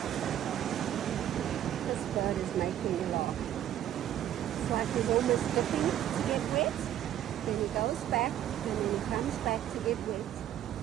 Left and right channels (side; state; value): left; quieter; 11.5 dB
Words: This bird is making me laugh. It's like he's almost dipping to get wet. Then he goes back, and then he comes back to get wet.